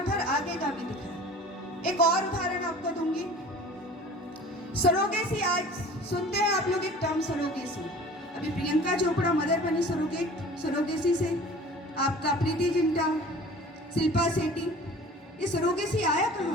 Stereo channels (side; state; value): both; normal; correlation 0.44